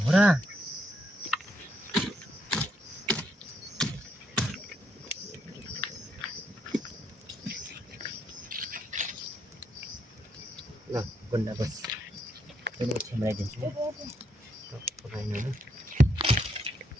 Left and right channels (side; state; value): both; normal; correlation 0.76